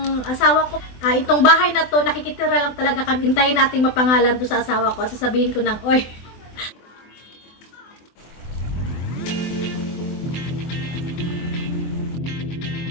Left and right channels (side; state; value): right; late; 24 ms